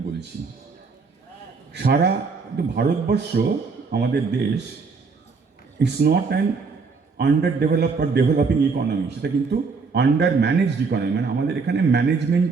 বলছি। সারা ভারতবর্ষ, আমাদের দেশ, it's not an under develop R developing economy, সেটা কিন্তু আন্ডার ম্যানেজড ইকোনমি, মানে আমাদের এখানে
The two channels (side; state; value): left; quieter; 4.7 dB